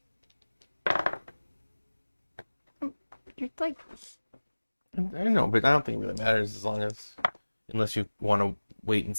You're like... I know, but I don't think it really matters as long as... Unless you want to wait and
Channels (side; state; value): both; inverted; correlation -1.00